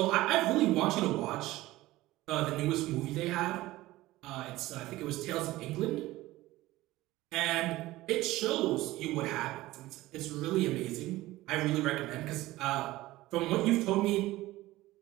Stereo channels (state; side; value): quieter; left; 17.6 dB